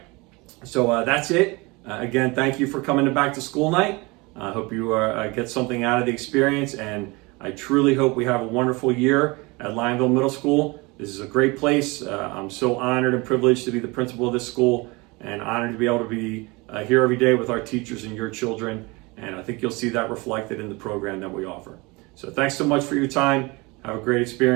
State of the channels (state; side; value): quieter; left; 25.4 dB